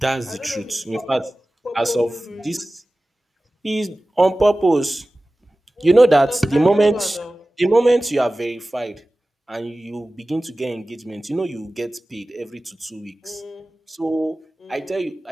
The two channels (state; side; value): normal; both; correlation 0.97